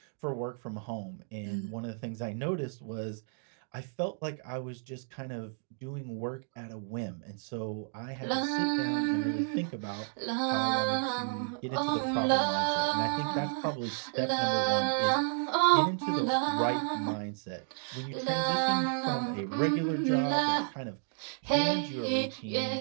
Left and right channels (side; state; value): left; silent; digital silence